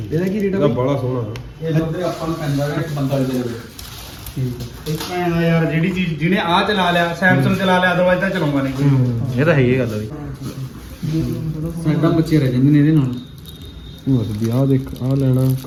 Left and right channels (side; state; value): both; identical; correlation 1.00